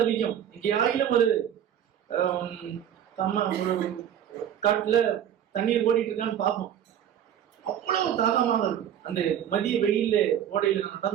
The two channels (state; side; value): quieter; left; 9.8 dB